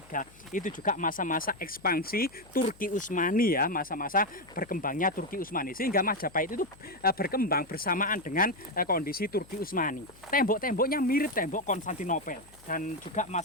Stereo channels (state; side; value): noise; left; hum, 25 dB below the sound